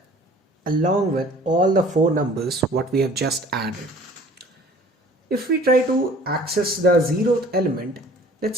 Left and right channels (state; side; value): normal; both; correlation 0.49